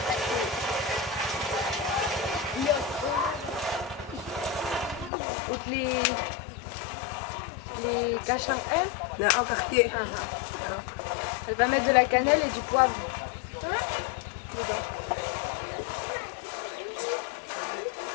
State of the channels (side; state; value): right; drops out; at 5.1 s